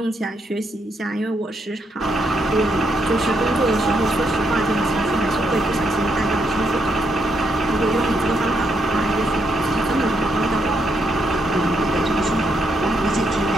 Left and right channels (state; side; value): normal; both; correlation 0.77